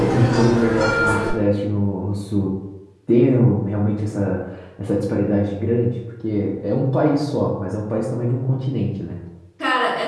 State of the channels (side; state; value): both; identical; correlation 1.00